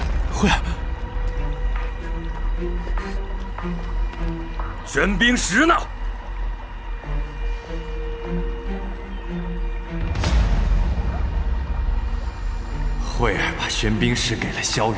慧儿，玄冰石呢？慧儿把玄冰石给了萧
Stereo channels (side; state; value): both; identical; correlation 1.00